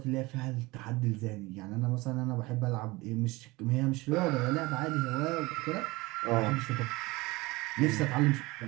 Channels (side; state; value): left; quieter; 22.2 dB